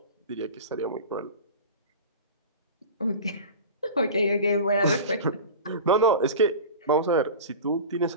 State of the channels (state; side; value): inverted; both; correlation -0.33